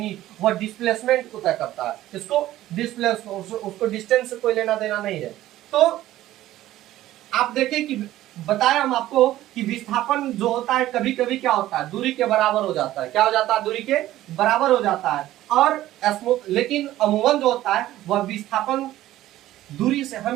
वह डिस्प्लेसमेंट को तय करता है। इसको उसको डिस्टेंस से कोई लेना देना नहीं है। तो आप देखें कि बताया हम आपको कि विस्थापन जो होता है कभी कभी क्या होता है, दूरी के बराबर हो जाता है। क्या हो जाता है, दूरी के बराबर हो जाता है। और लेकिन अमूमन जो होता है वह विस्थापन दूरी से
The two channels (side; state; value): left; quieter; 14.6 dB